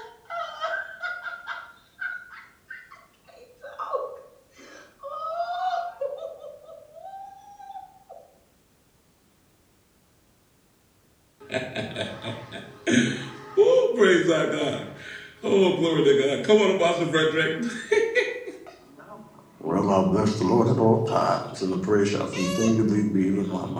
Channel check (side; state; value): both; identical; correlation 1.00